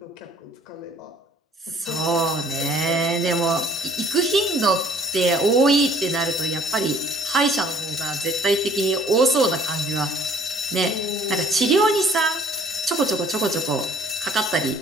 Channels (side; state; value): both; normal; correlation 0.55